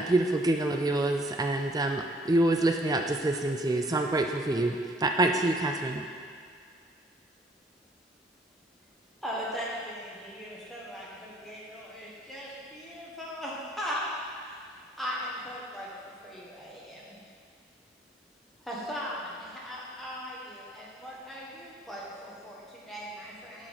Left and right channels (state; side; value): normal; both; correlation 0.62